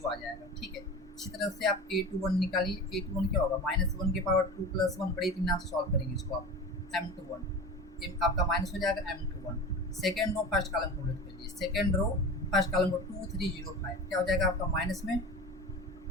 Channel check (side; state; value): both; normal; correlation 0.32